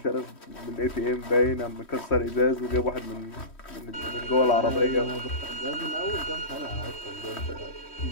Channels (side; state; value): right; late; 3.1 ms